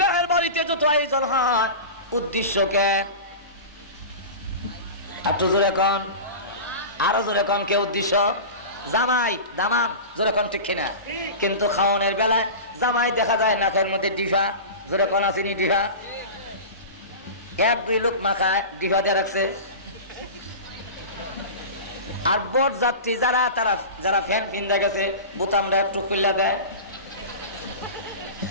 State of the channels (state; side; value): inverted; both; correlation -0.30